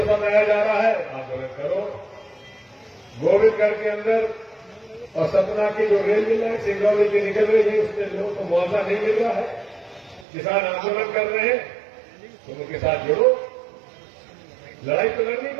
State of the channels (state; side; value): drops out; left; at 10.2 s